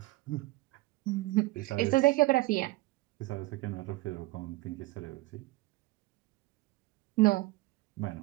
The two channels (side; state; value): left; quieter; 20.3 dB